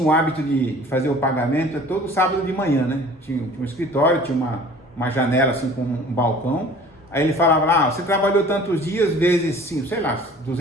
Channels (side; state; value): both; normal; correlation 0.47